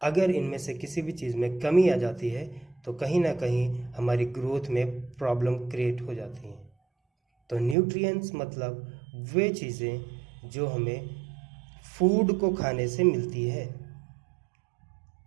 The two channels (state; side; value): drops out; left; at 7.8 s